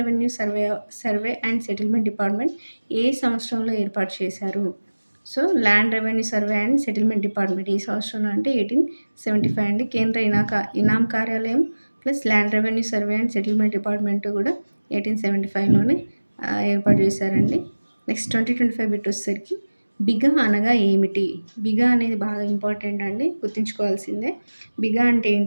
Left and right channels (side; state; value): both; inverted; correlation -1.00